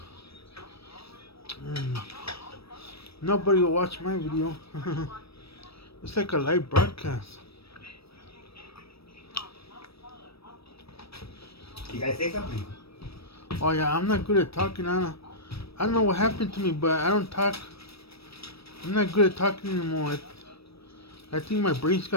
Nobody will watch my video. It's like a live broadcast. You guys say something? Oh yeah, I'm not good at talking. I don't know what happened to me, but I don't talk. I'm not good at talking anymore. I think my brain's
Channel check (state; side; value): late; right; 0.77 ms